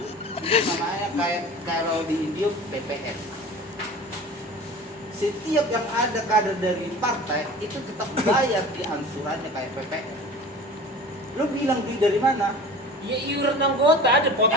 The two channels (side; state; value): both; normal; correlation 0.39